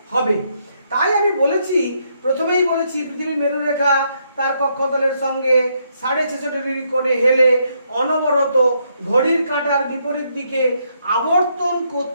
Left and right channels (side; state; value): both; inverted; correlation -0.75